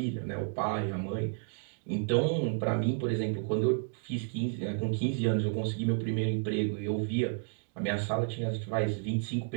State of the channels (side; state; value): left; silent; 57 dB below the other